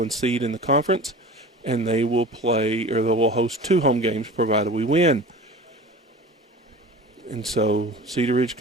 seed in the conference, and they will play, or they will host 2 home games provided we win. And so Cedar Ridge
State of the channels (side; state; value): both; normal; correlation 0.37